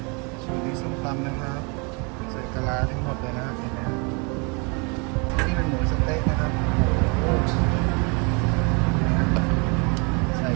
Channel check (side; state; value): left; quieter; 32.2 dB